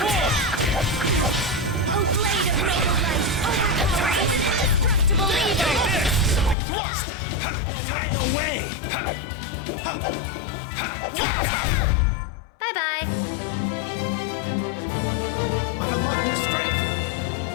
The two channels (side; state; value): right; drops out; at 6.6 s